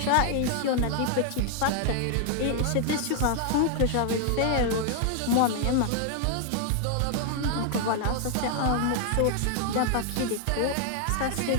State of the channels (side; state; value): both; different; correlation 0.00